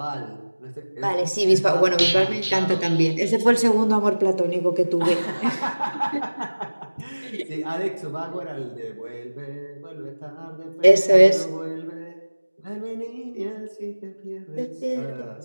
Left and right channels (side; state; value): both; inverted; correlation -1.00